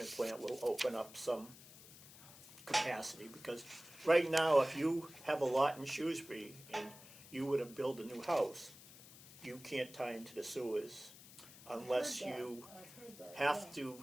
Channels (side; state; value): left; noise; hiss, 18 dB below the sound